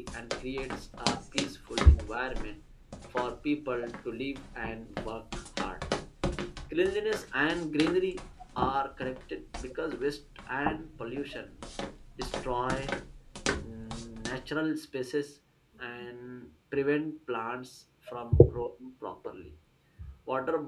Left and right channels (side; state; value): both; identical; correlation 1.00